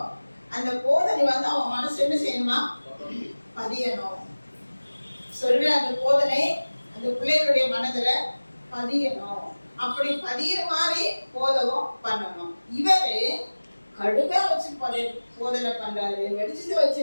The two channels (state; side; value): inverted; both; correlation -1.00